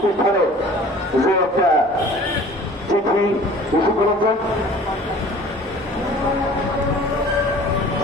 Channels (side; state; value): both; normal; correlation 0.47